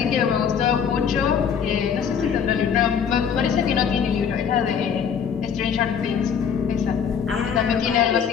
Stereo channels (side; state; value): right; quieter; 7.3 dB